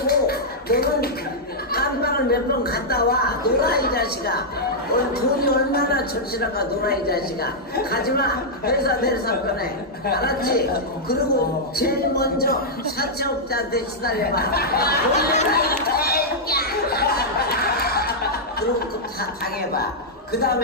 너는 깜빵을 몇 번 갔다 와. 놀아 이 자식아. 오늘 돈이 얼마나 절실한가. 놀아 이 자식아. 가지마. 회사 내려서 꺼내. 알았지? 그리고 제일 먼저 사채업자한테 시달려봐. 놀라 이 새끼야. 그리고 다 당해봐. 그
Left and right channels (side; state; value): both; normal; correlation -0.07